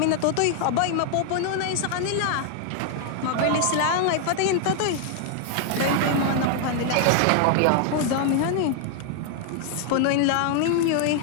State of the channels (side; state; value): both; different; correlation 0.00